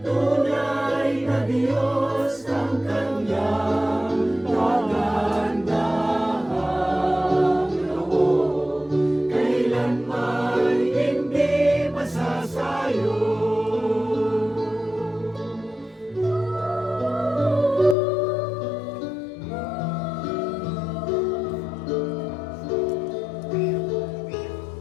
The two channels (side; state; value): right; drops out; at 17.9 s